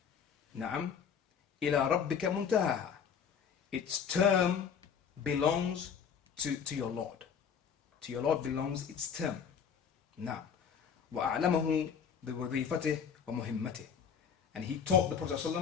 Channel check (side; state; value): right; quieter; 7.2 dB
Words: نعم. إلى ربك منتهاها. Its term belongs to your Lord. To your Lord belongs its term. نعم. وأعلمه بوظيفته ومهمته. And he taught the Prophet